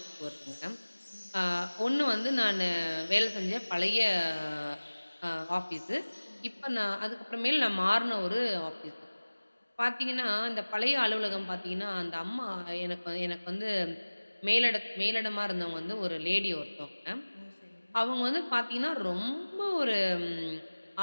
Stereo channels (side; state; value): both; inverted; correlation -1.00